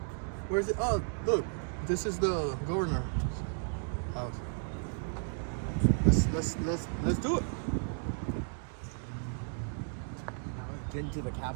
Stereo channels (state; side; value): silent; left; 55 dB below the other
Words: Where's it? Oh, look, this is the governor's house. Let's do it. Now we've been to the